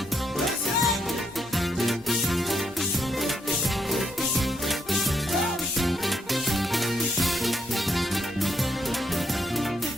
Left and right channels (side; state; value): both; normal; correlation 0.77